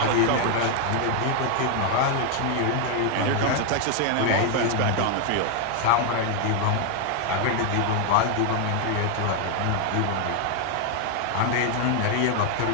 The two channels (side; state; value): both; different; correlation 0.00